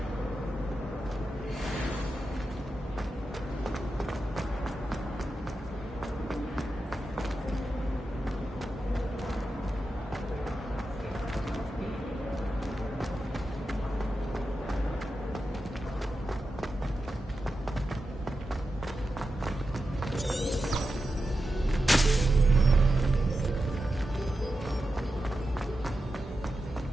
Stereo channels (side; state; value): both; normal; correlation 0.90